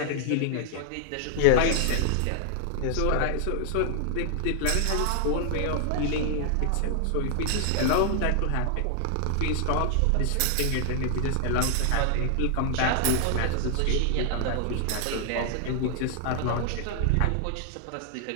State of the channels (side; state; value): both; different; correlation -0.01